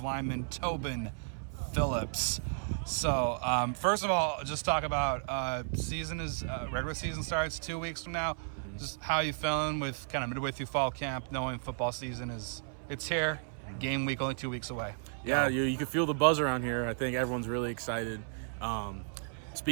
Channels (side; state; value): left; silent; 55 dB below the other